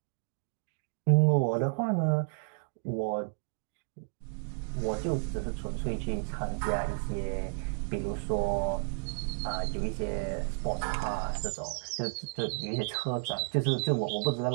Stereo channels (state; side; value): silent; left; digital silence